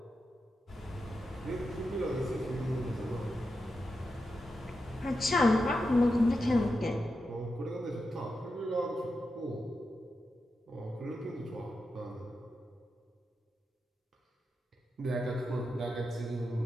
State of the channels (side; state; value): both; normal; correlation 0.88